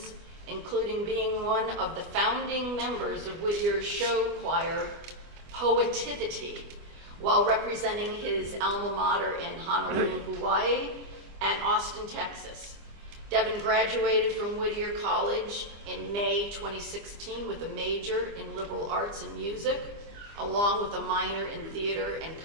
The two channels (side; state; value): left; late; 25 ms